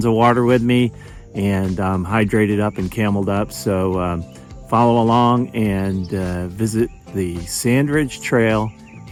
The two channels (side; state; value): both; identical; correlation 1.00